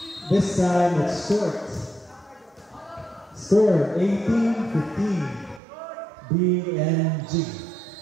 This time it's short. Score 18-15. BNG.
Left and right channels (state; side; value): drops out; left; at 5.6 s